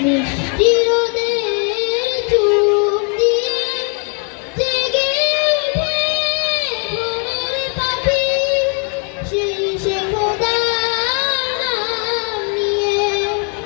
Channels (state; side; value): quieter; right; 39.4 dB